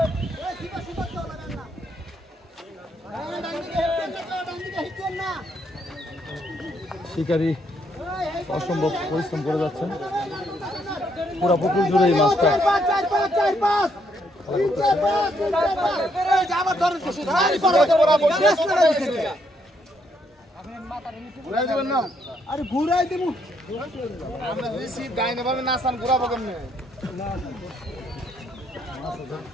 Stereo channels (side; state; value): both; normal; correlation 0.73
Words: এই সুতা তো লাগান না ডান দিকে হিটেন না শিকারী অসম্ভব পরিশ্রম করে যাচ্ছেন পুরো পুকুর জুড়ে এই মাছটা 4 আরে ঘুরাই দেবো ঘুরাবো কেমনে